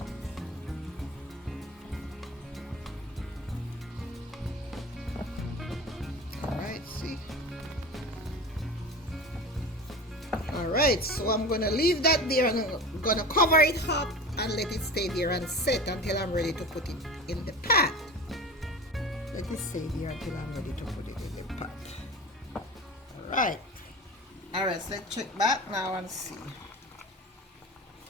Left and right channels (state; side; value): normal; both; correlation 0.34